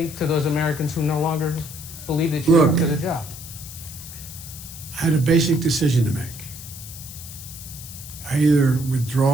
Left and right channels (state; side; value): noise; left; hiss, 13 dB below the sound